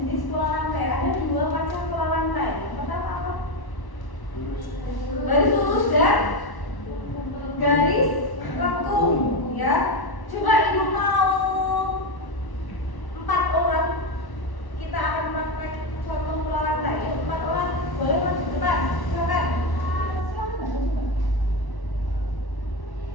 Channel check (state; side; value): late; right; 1.1 ms